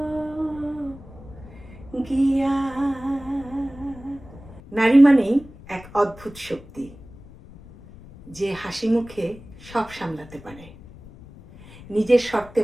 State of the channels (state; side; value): noise; left; rumble, 19 dB below the sound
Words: গিয়া। নারী মানেই এক অদ্ভুত শক্তি, যে হাসি মুখে সব সামলাতে পারে। নিজের শর্তে